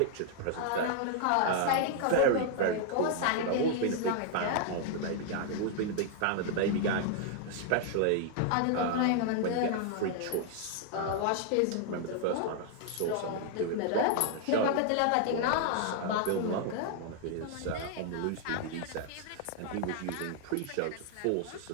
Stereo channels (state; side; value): different; both; correlation 0.00